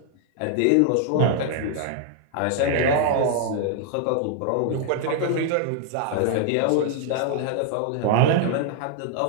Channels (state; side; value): different; both; correlation 0.00